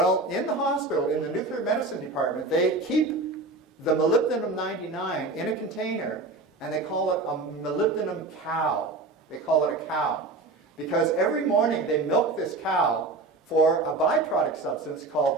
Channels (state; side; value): quieter; left; 3.4 dB